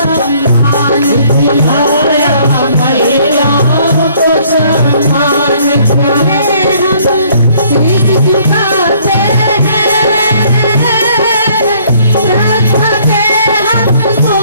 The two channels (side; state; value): both; inverted; correlation -0.61